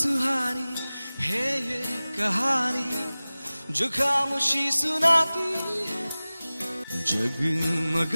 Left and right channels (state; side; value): inverted; both; correlation -0.98